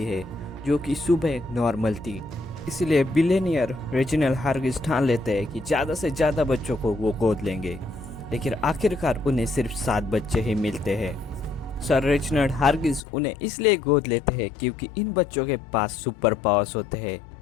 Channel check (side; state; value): right; drops out; at 13.0 s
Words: है, जो कि सुबह नॉर्मल थी। इसलिए बिलियनियर रेजिनल हार्गिस ठान लेते हैं कि ज़्यादा से ज़्यादा बच्चों को वो गोद लेंगे, लेकिन आखिरकार उन्हें सिर्फ 7 बच्चे ही मिलते हैं। सर रेजिनल हार्गिस उन्हें इसलिए गोद लेते हैं क्योंकि इन बच्चों के पास सुपर पावर्स होते हैं